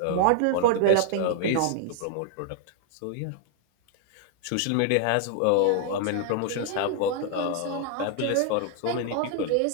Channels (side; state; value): both; different; correlation 0.00